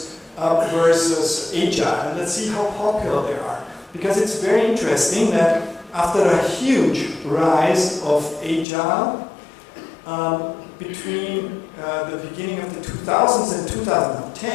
versus Agile. And let's see how popular they are. Because it's very interesting that after a huge rise of Agile, between the beginning of the 2000s and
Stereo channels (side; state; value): right; drops out; at 8.7 s